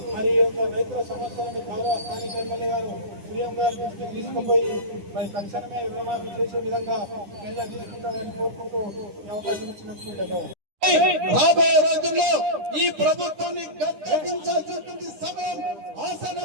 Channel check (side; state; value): left; late; 10 ms